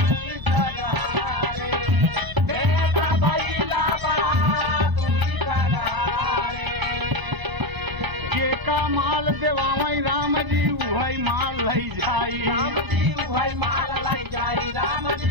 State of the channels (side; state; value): left; late; 1.3 ms